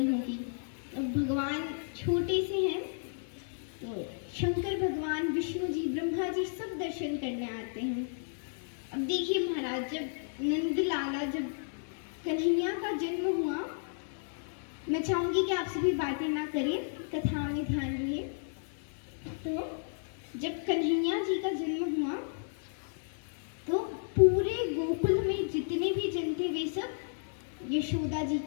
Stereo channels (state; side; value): silent; right; digital silence